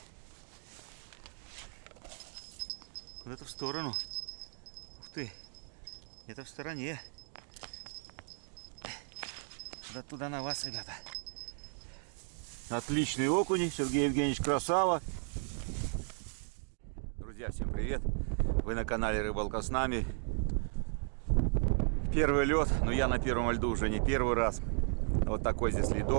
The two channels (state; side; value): silent; left; 54 dB below the other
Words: Куда-то в сторону. Ух ты, это в стороне. Туда на вас, ребята. Отличный окунь, Сергей Евгеньевич, красава. Друзья, всем привет. Вы на канале Рыбалка с нами. Первый лед, но я на первом льду уже не первый раз. Вот такой здесь